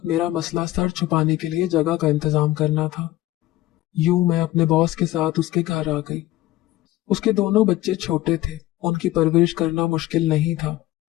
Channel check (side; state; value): right; quieter; 16.1 dB